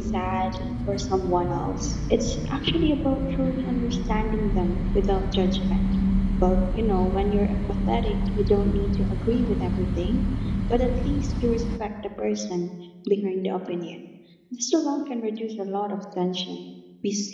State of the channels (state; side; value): identical; both; correlation 1.00